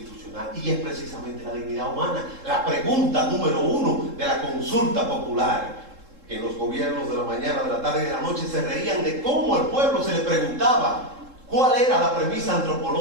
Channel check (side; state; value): left; late; 3.7 ms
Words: y es precisamente la dignidad humana. La pregunta número 1 de la consulta popular, que en los gobiernos de la mañana, de la tarde y de la noche se reían de cómo al pueblo se le preguntaba cuál era la premisa